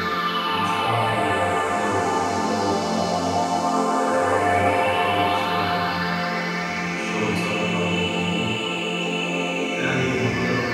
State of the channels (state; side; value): identical; both; correlation 1.00